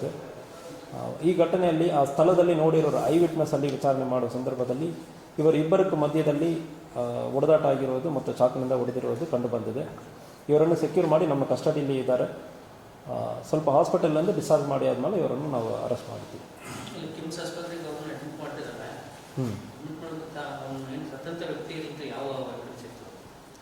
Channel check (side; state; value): both; identical; correlation 1.00